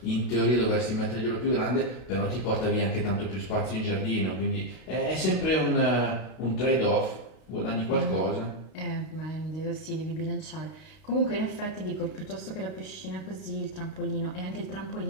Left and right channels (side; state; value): right; late; 32 ms